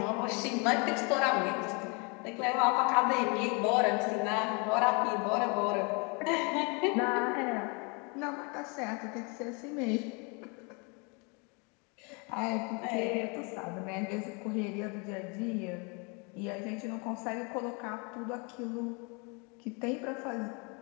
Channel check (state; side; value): quieter; right; 32.2 dB